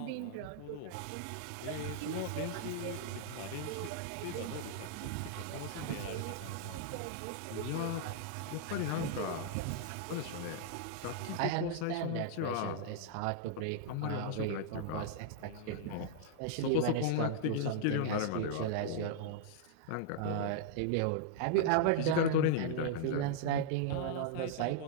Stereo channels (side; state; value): both; different; correlation -0.01